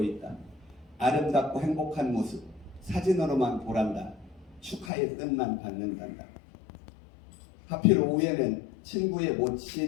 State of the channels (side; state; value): right; drops out; at 4.9 s